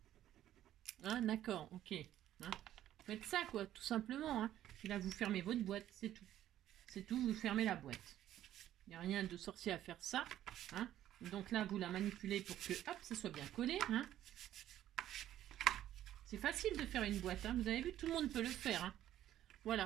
Hein, d'accord, ok. Hein. Faites ça, quoi, tout simplement. Hein. Puis là, vous fermez votre boîte, c'est tout. C'est tout, vous fermez la boîte. Il n'y a rien de sorcier à faire ça. Hein. Donc là, vous la manipulez pour que, hop, ça soit bien collé. Hein. C'est facile de faire une boîte. Hein. Vous avez vu, tout le monde peut le faire. Hein.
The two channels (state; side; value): quieter; left; 12.4 dB